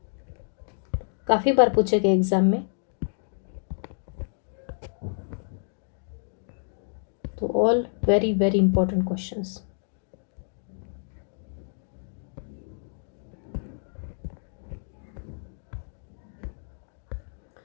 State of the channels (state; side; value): silent; right; digital silence